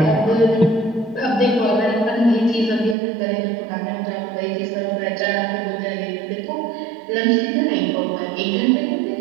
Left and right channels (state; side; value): drops out; left; at 3.0 s